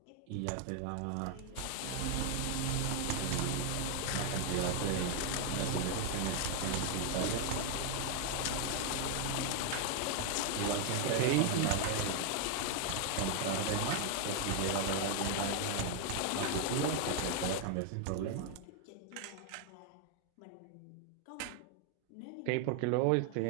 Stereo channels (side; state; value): both; different; correlation 0.00